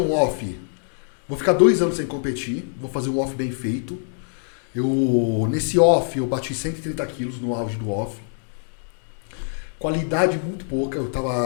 off. Vou ficar 2 anos sem competir. Vou fazer um off bem feito. Nesse off, eu bati 130 quilos no auge do off. Qualidade muito pouca. Eu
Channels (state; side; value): silent; right; digital silence